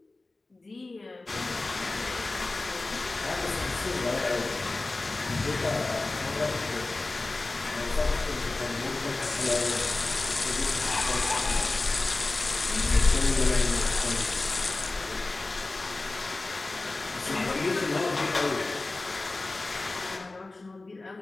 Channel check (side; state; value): right; quieter; 3.2 dB